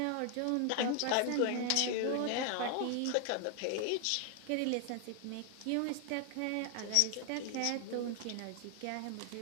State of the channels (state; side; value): different; both; correlation 0.00